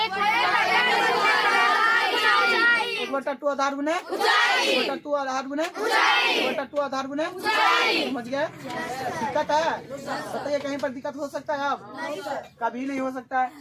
1/2 बटा 2 आधार गुने 2 बटा 2 आधार गुने 2 बटा 2 आधार गुने। समझ गए? दिक्कत है? बताइए कहीं पर दिक्कत हो सकता है? अब कभी नहीं हो सकता है।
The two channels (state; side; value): identical; both; correlation 1.00